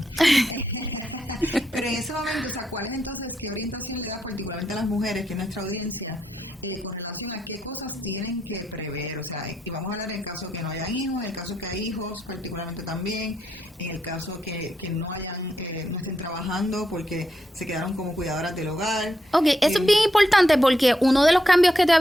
Pero en ese momento, o sea, ¿cuál es entonces, qué orientación le da particularmente a las mujeres, que es nuestra audiencia, con relación a qué cosas tienen que prever? O sea, y vamos a hablar en el caso que no hayan hijos, en el caso que hay hijos particularmente también, en el caso que no estén trabajando porque se quedaron como cuidadoras del hogar. Ok, eso es bien importante porque uno de los cambios que te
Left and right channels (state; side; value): normal; both; correlation 0.81